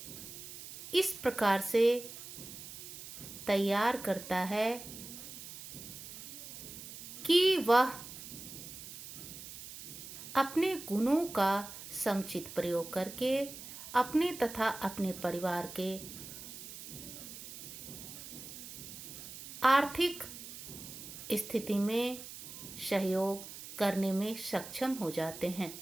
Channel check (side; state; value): right; noise; hiss, 12 dB below the sound